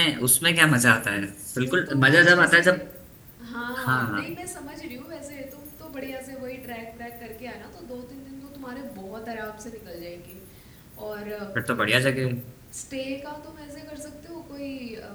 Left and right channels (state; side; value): identical; both; correlation 1.00